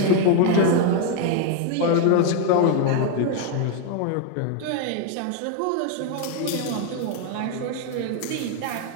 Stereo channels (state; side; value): different; both; correlation 0.01